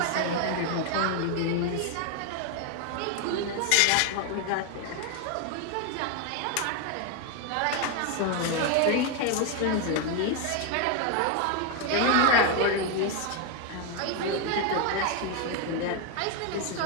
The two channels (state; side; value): different; both; correlation 0.01